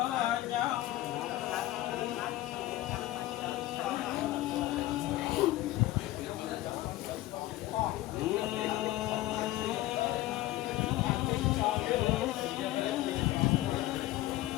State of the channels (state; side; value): quieter; right; 16.2 dB